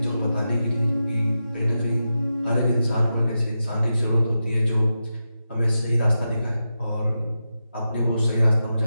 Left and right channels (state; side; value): inverted; both; correlation -0.90